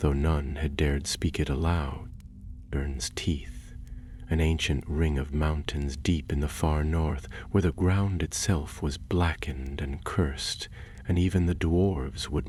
none had dared speak it aloud. Dalvarn's teeth, an ancient ring of mountains deep in the far north, where the ground itself was blackened and cursed, and even the dwarves would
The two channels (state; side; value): identical; both; correlation 1.00